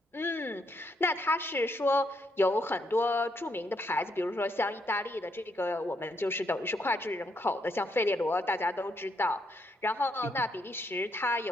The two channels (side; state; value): both; normal; correlation 0.76